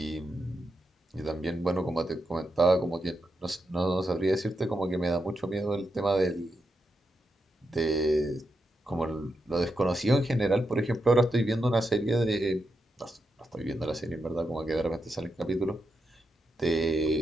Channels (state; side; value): normal; both; correlation 0.85